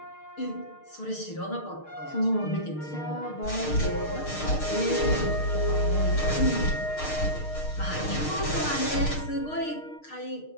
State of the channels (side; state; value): right; late; 6.5 ms